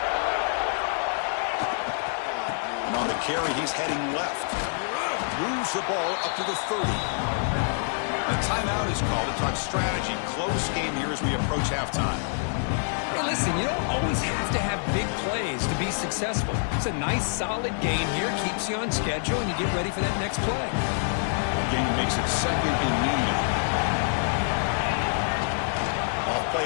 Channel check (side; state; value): right; silent; 56 dB below the other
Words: And on the carry, he's heading left. Moves the ball up to the 30. A timeout is called to talk strategy. Close game here as we approach halftime. Hey, listen, you don't always have to have big plays to be successful. It's a nice, solid game here. Keeps you on schedule, and you get ready for that next play. Game makes it second and medium. Off